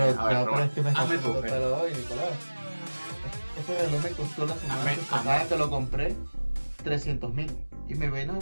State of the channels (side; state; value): both; inverted; correlation -1.00